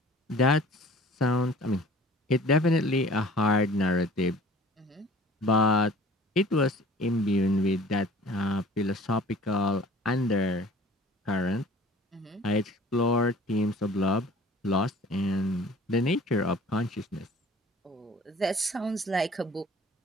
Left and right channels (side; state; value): both; normal; correlation 0.48